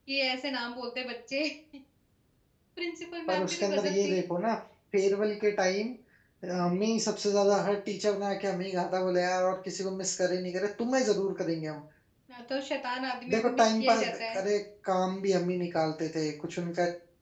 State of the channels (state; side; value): identical; both; correlation 1.00